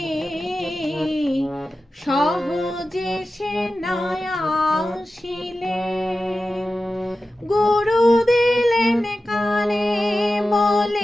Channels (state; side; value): normal; both; correlation 0.94